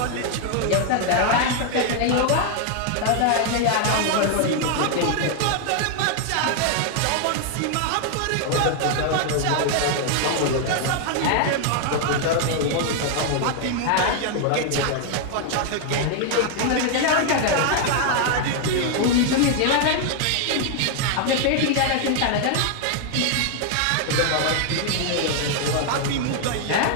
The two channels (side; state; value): both; different; correlation 0.00